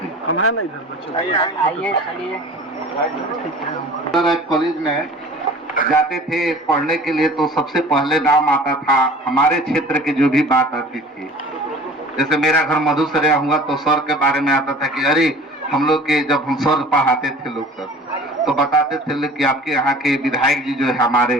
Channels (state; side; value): normal; both; correlation 0.44